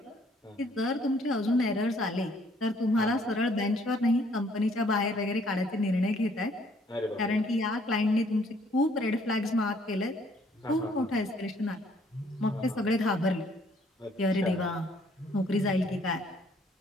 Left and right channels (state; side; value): normal; both; correlation 0.63